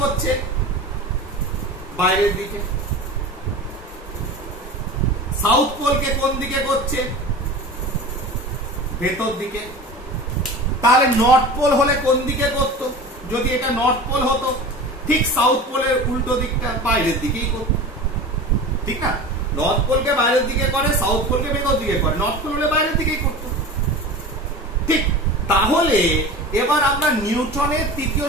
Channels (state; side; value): normal; both; correlation 0.33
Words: বাইরের দিকে। সাউথ পোলকে কোন দিকে করছে, ভেতর দিকে। তাহলে নর্থ পোল হলে কোন দিকে করত, যদি এটা নর্থ পোল হতো, ঠিক সাউথ পোলের উল্টো দিকটা বাইরের দিকেই করত, ঠিক না? নর্থ পোলকে বাইরের দিকে করে, সাউথ পোলকে ভেতর দিকে করে, নর্থ পোল হলে বাইরের দিকেই করত, ঠিক। তাহলে এবার আমরা নিউটনের তৃতীয়